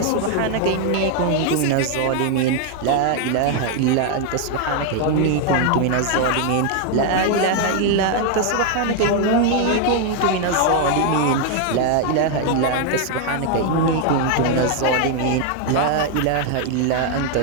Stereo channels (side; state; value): both; different; correlation 0.00